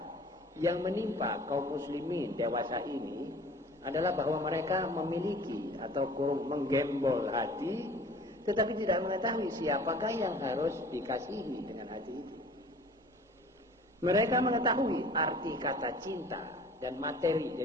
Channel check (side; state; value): both; normal; correlation 0.47